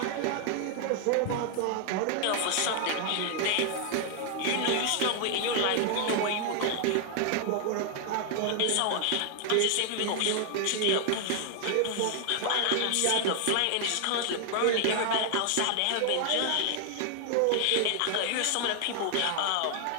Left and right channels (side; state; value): both; different; correlation 0.00